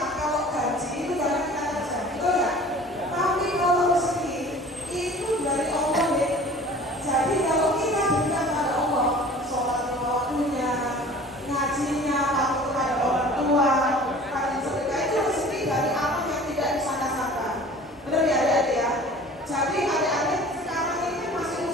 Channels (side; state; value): both; normal; correlation 0.45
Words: kalau gaji itu dari kita saja, betul ya? Tapi kalau rezeki itu dari Allah ya. Jadi kalau kita berikan kepada Allah, sholat lima waktunya, ngajinya, patuh kepada orang tua, rajin sedekah, itu rezeki dari Allah yang tidak disangka-sangka. Benar ya adik-adik ya? Jadi adik-adik sekarang ini masih